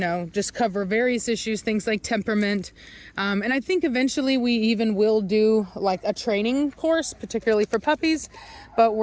just cover various issues, things like temperament. And I think eventually we even will do like a training course, particularly for puppies. But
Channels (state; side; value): identical; both; correlation 1.00